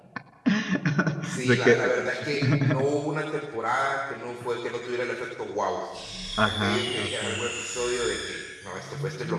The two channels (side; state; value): both; identical; correlation 1.00